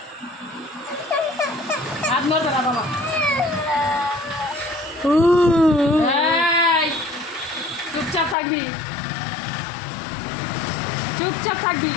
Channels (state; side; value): drops out; right; at 8.3 s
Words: হাত নড়বে না বাবা। এই, চুপচাপ থাকবি